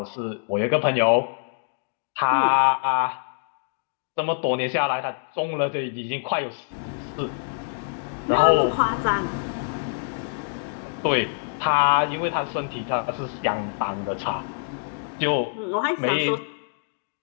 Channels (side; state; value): right; silent; digital silence